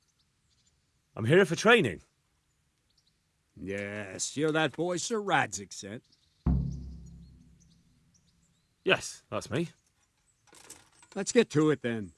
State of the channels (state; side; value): identical; both; correlation 1.00